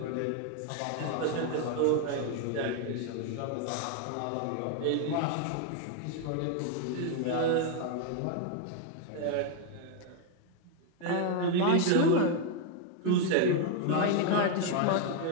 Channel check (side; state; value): both; different; correlation 0.01